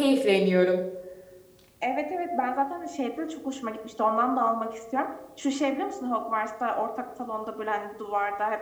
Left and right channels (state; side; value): identical; both; correlation 1.00